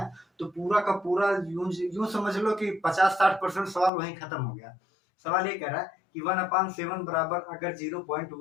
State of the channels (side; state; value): right; drops out; at 3.9 s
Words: तो पूरा का पूरा यूं समझ लो कि 50-60% सवाल वहीं खत्म हो गया। सवाल ये कह रहा है कि 1/7 बराबर अगर